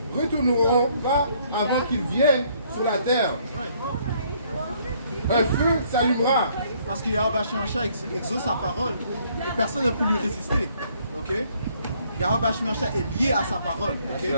retourneront pas avant qu'ils viennent sur la terre. Un feu s'allumera. Parce que Yahweh Hashem Yahushua exauce sa parole et personne ne peut lui résister. Ok? Yahweh Hashem Yahushua est lié à sa parole. Ok?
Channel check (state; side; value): inverted; both; correlation -0.65